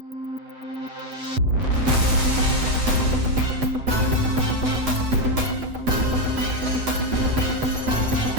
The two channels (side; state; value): left; late; 7.9 ms